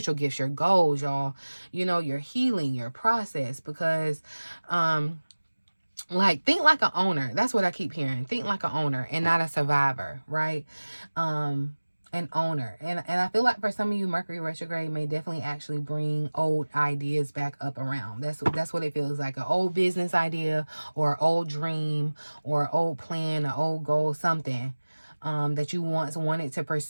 gifts, your goals, y'all. You know, your healing, your process. Because like, think like an owner. That's what I keep hearing. Think like an owner and not a survivor, right? an owner. And I feel like for some of you, Mercury retrograde may definitely actually bring old ideas back up around. That's what it feels like. An old business idea or old dream or old plan, an old goal, something that you once wanted to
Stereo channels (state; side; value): inverted; both; correlation -1.00